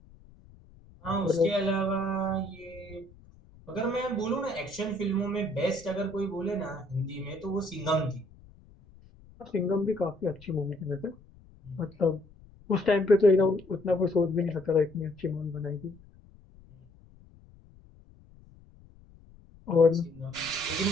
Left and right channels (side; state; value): left; noise; rumble, 24 dB below the sound